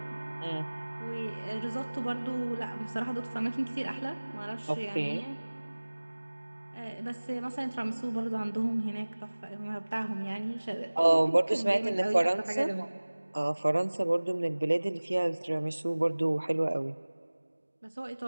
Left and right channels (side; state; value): both; inverted; correlation -1.00